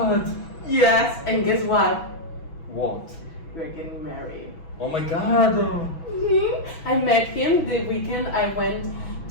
Yes, and guess what? What? We're getting married. Oh my god. I met him the weekend I went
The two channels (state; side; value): late; right; 6.1 ms